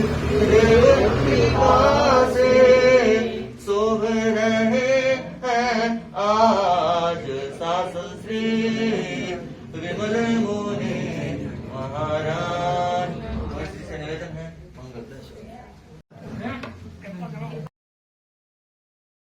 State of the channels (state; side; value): identical; both; correlation 1.00